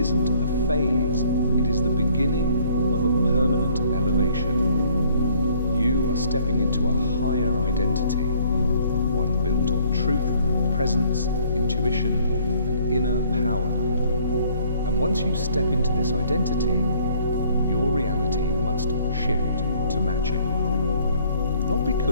a phase, it is the beginning of a permanent elevation. You are stepping into a higher identity, one built on truth, presence, intuition, and inner power. And once you step into this identity, your reality must shift to match it. Not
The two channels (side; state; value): both; inverted; correlation -0.60